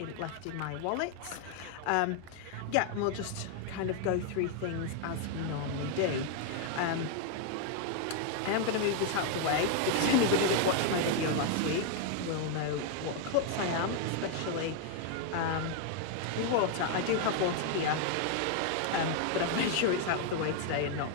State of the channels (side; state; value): both; different; correlation 0.00